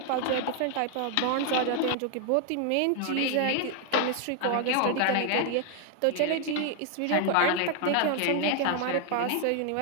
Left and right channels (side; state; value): both; different; correlation 0.00